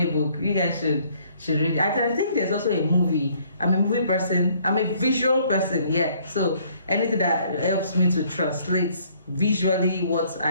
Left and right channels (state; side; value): inverted; both; correlation -0.62